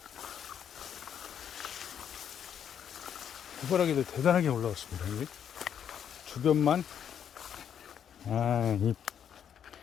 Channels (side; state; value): right; quieter; 8.7 dB